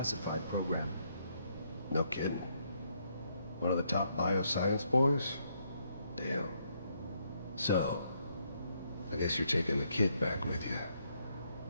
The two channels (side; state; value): both; inverted; correlation -0.74